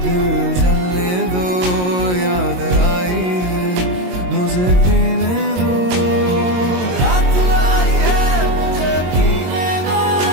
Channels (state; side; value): late; left; 22 ms